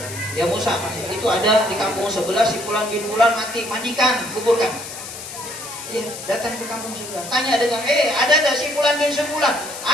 Ya Musa, itu ada di kampung sebelah si Fulan bin Fulan mati, mandikan, kuburkan. Ya, datang ke kampung sebelah, tanya dengan, ada tak si Fulan bin Fulan?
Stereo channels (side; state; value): left; noise; hiss, 11 dB below the sound